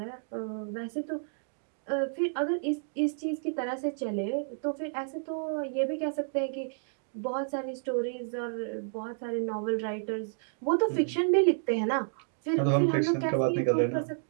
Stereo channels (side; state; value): left; silent; digital silence